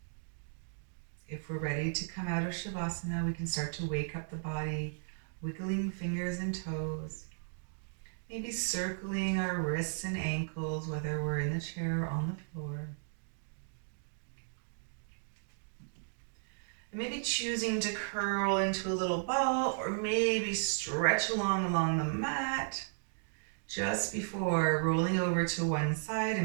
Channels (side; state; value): left; silent; digital silence